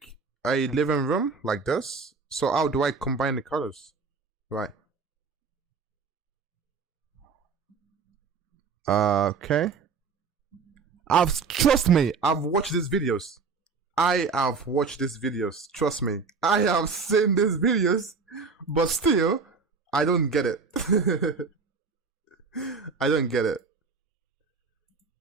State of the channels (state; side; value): quieter; left; 5.0 dB